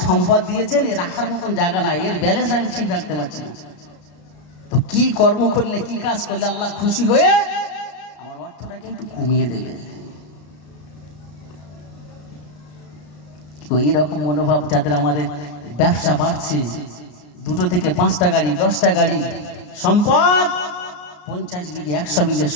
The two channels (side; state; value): right; late; 33 ms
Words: সম্পদ দিয়েছেন, এর রাখার মতন জায়গা নাই, এর ব্যালেন্স আমি ঠিক রাখতে পারছি না। তো কি কর্ম করলে, কি কাজ করলে আল্লাহ খুশি হয়ে আমার অর্থটাকে একটু কমিয়ে দেবে? তো এইরকম মনোভাব যাদের, আমাদের ব্যবসা বাড়ছে, 2 থেকে 5টা গাড়ি, 10টা গাড়ি, সম্পদ 50 বিঘে 100 বিঘে